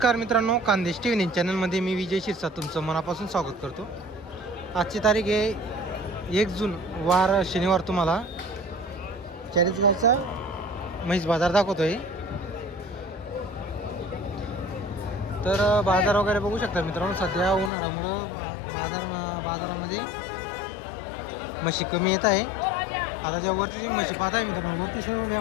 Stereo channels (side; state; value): right; drops out; at 17.7 s